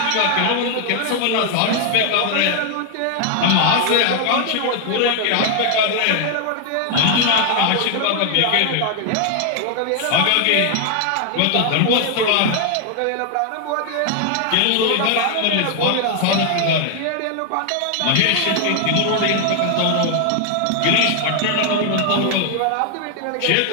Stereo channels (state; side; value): different; both; correlation 0.00